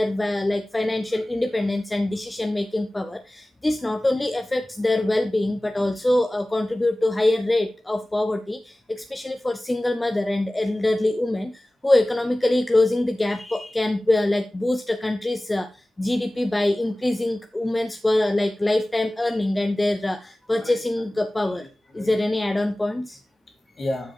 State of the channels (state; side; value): normal; both; correlation 0.98